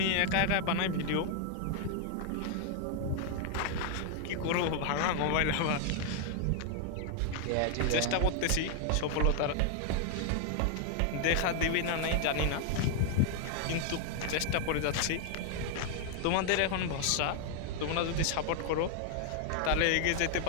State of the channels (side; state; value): both; different; correlation 0.00